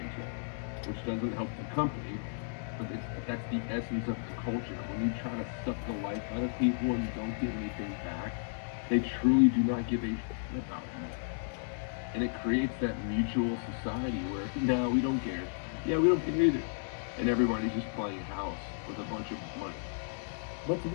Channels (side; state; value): right; silent; digital silence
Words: which doesn't help the company, but that's the essence of the culture. When you try to suck the life out of people and you don't get anything back, they truly do not give a shit about you. And it creates that mutual society where, no, we don't care. Yeah, we don't care either. And everybody's just playing house with a bunch of money. But to